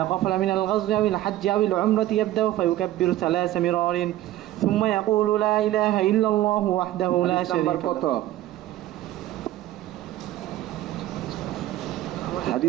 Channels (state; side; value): quieter; left; 14.4 dB